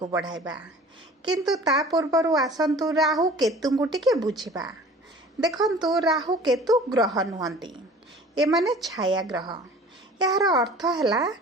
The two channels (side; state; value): both; normal; correlation 0.45